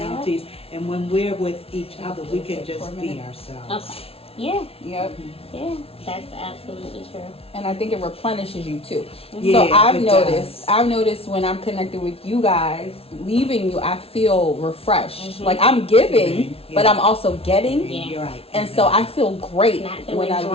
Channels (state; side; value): late; right; 0.28 ms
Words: And when we're with each other, we can just be ourselves. Okay. Yeah. Yep. Yeah. That's absolutely true. And I think it replenishes you too. Yeah, So I've it noticed. does. I've noticed when I'm connected with you guys, leaving you, I feel refreshed. Like I'm giving, Yeah. but I'm also getting, Yeah. You're right. and so I feel great Not feeling when I